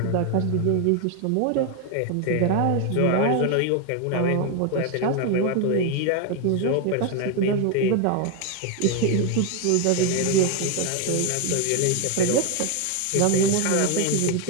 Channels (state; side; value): different; both; correlation 0.01